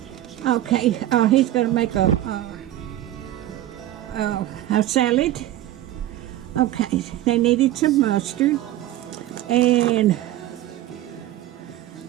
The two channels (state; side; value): quieter; left; 13.9 dB